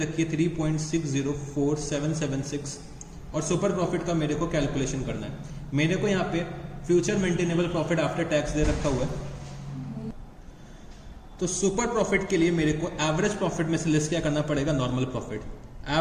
है 3.604776 और सुपर प्रॉफिट का मेरे को कैलकुलेशन करना है. मेरे को यहाँ पे future maintainable profit after tax दे रखा हुआ है. तो सुपर प्रॉफिट के लिए मेरे को एवरेज प्रॉफिट में से लेस क्या करना पड़ेगा? Normal profit.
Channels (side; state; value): both; identical; correlation 1.00